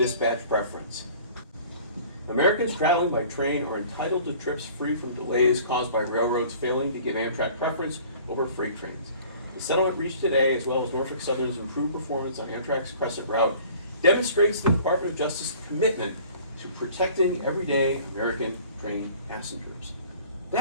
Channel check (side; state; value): both; inverted; correlation -0.49